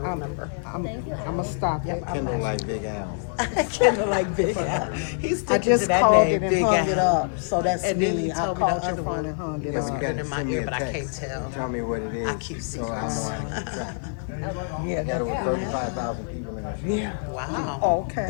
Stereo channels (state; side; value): silent; right; 61 dB below the other